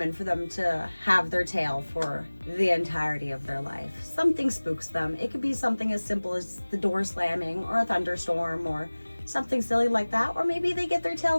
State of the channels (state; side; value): inverted; both; correlation -1.00